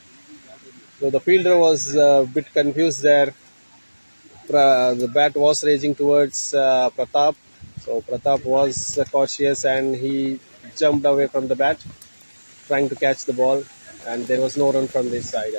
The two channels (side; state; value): both; inverted; correlation -1.00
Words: So the fielder was a bit confused there. The bat was raging towards Pratap. So Pratap was cautious and he jumped away from the bat, trying to catch the ball. And there was no run from this side